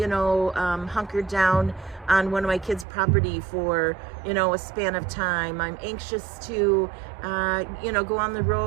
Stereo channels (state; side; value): drops out; left; at 2.9 s